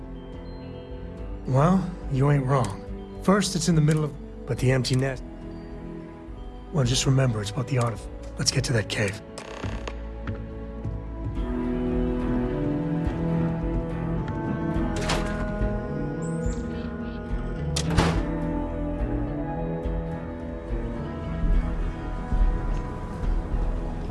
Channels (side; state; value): both; identical; correlation 1.00